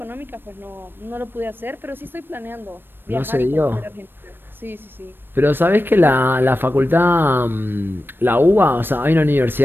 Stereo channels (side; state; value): left; late; 0.097 ms